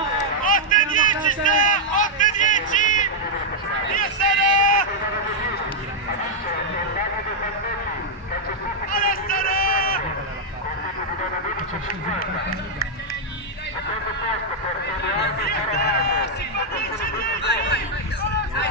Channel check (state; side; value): normal; both; correlation -0.03